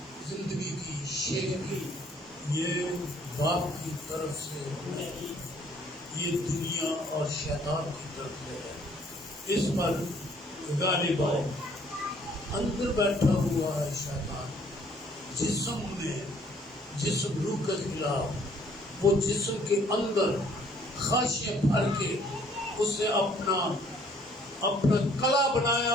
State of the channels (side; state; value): both; normal; correlation 0.61